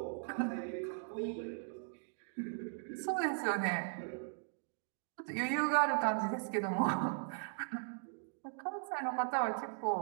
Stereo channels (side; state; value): left; silent; digital silence